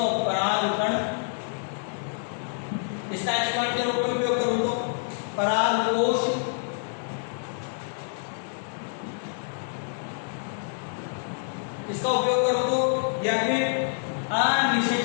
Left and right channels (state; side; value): silent; right; 60 dB below the other